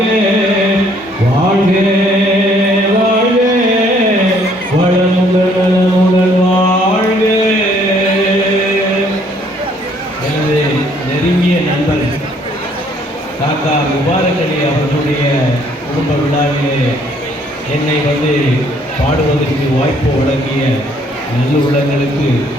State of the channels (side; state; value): both; normal; correlation 0.64